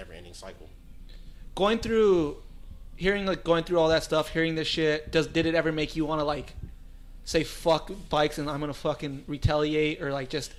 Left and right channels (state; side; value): identical; both; correlation 1.00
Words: cycle. Going through all that stuff, hearing this shit, did it ever make you want to like say fuck bikes and I'm gonna fucking retaliate or like just